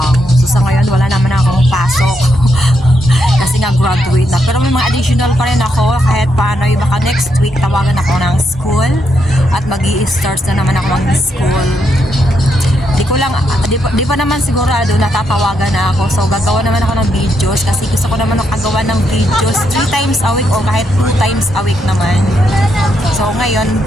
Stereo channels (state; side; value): normal; both; correlation 0.79